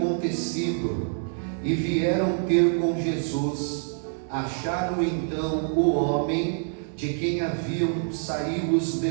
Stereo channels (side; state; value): left; silent; digital silence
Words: e vieram ter com Jesus. Acharam então o homem de quem haviam saído os